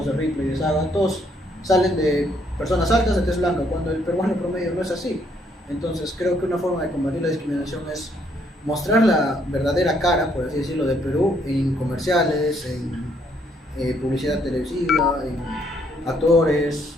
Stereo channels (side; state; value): both; normal; correlation 0.70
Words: de Ripley y de Saga, todos salen de personas altas de tez blanca, cuando el peruano promedio no es así. Entonces creo que una forma de combatir la discriminación es mostrar la verdadera cara, por así decirlo, de Perú en comerciales, en publicidad televisiva, en actores,